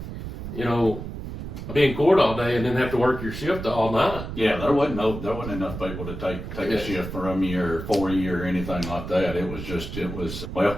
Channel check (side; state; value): right; noise; rumble, 8 dB below the sound